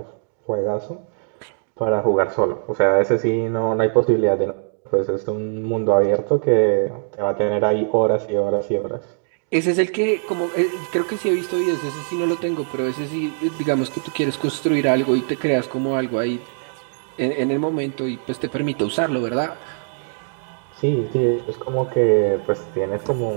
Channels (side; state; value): left; silent; digital silence